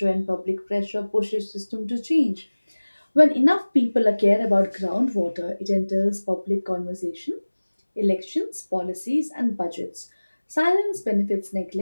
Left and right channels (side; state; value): both; inverted; correlation -1.00